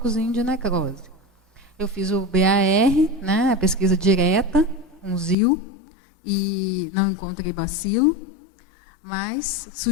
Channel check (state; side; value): drops out; right; at 5.4 s